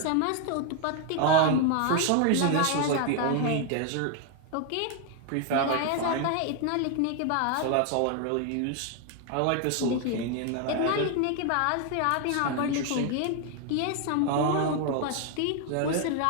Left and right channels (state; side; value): different; both; correlation 0.01